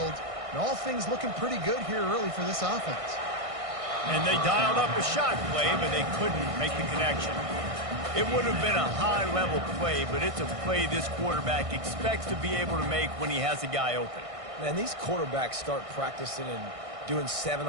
And all things looking pretty good here early for this offense. And they dialed up a shot play, but they couldn't make the connection. It would have been a high-level play, but it's a play this quarterback expects to be able to make when he has a guy open. Man, these quarterbacks start practicing and doing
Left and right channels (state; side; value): late; left; 1.6 ms